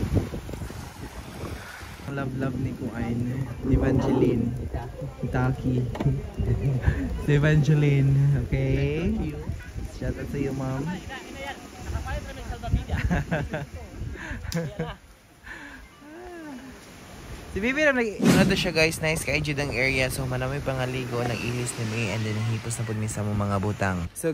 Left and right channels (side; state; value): both; identical; correlation 1.00